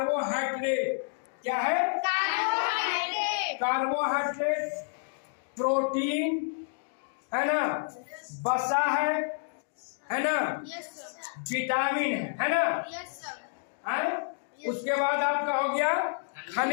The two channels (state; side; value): silent; right; digital silence